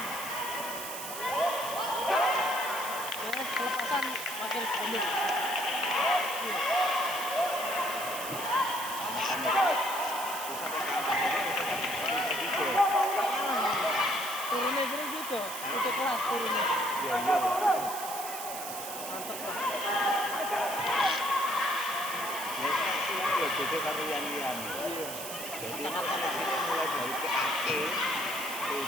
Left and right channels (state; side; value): noise; right; hiss, 8 dB below the sound